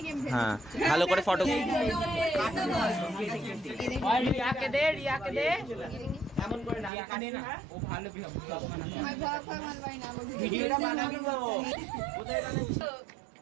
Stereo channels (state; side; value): drops out; left; at 6.9 s